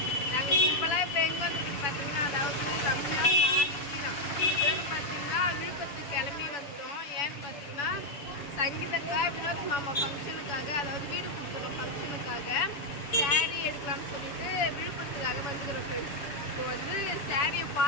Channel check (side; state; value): right; late; 7.0 ms